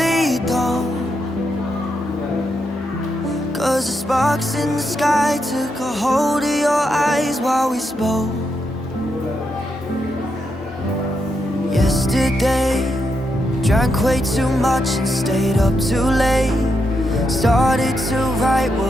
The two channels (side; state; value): both; normal; correlation 0.82